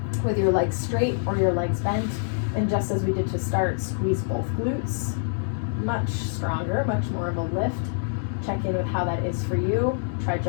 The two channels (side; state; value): right; silent; digital silence